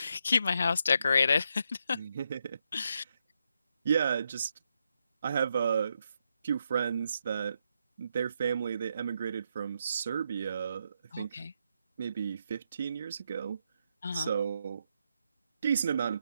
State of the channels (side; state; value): both; inverted; correlation -0.81